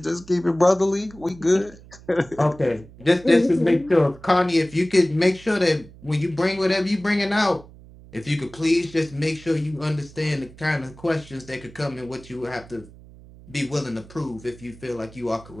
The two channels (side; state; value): right; noise; hum, 21 dB below the sound